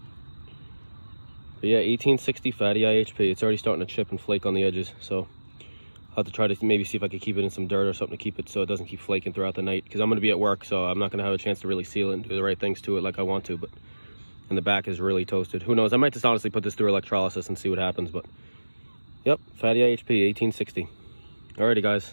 But yeah, 1860 fatty IHP. It's already starting to chip and flake on the edges. So I'll have to try to maybe see if I could keep it in some dirt or something to keep it so it doesn't keep flaking throughout the night. Because I'm going to be at work, so I'm not going to have a chance to really seal it and do the right things to it like I want to. But and the back is really toasted. Who knows? I might just honestly put this through electrolysis and see what happens. But yep, fatty IHP, 1860. Alrighty,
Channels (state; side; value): inverted; both; correlation -1.00